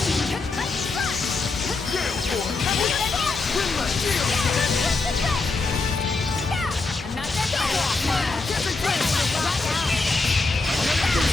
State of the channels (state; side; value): quieter; right; 3.7 dB